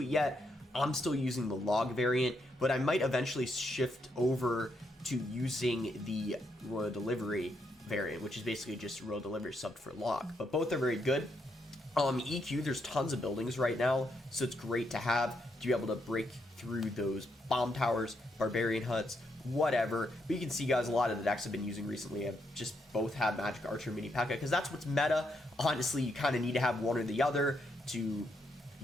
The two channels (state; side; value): normal; both; correlation 0.79